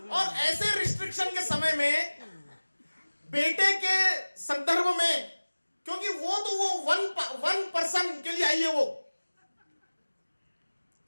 और ऐसे रिस्ट्रिक्शन के समय में बेटे के संदर्भ में, क्योंकि वो तो वो वन पर्सन के लिए आई है वो,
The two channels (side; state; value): both; inverted; correlation -1.00